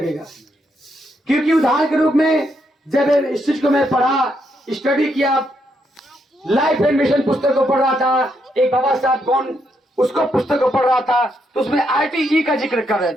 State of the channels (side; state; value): both; normal; correlation 0.78